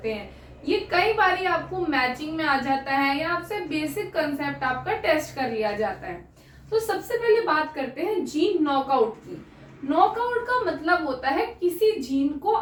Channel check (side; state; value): both; identical; correlation 1.00